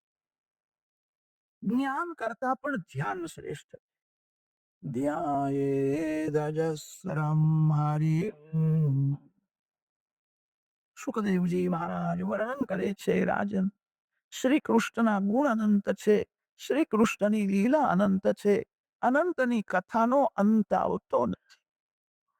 જ્ઞાન કરતા પણ ધ્યાન શ્રેષ્ઠ. ધ્યાયેદજસ્રમ હરિમ. સુખદેવજી મહારાજ વર્ણન કરે છે, રાજન, શ્રી કૃષ્ણના ગુણ અનંત છે, શ્રી કૃષ્ણની લીલા અનંત છે, અનંતની કથાનો અંત આવતો નથી.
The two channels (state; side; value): identical; both; correlation 1.00